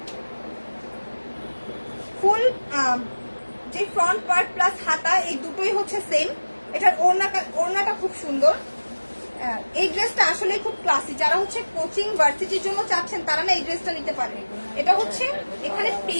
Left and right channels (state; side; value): inverted; both; correlation -1.00